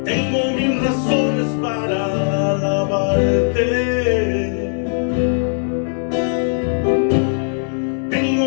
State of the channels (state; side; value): silent; right; 64 dB below the other